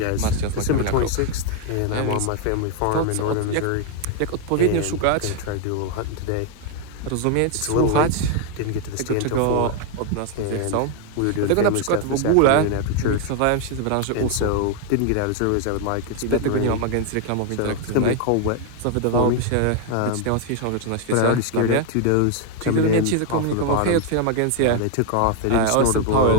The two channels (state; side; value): different; both; correlation 0.01